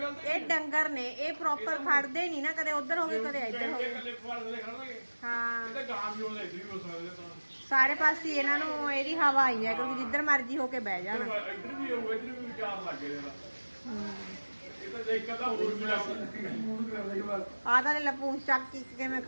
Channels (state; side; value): inverted; both; correlation -1.00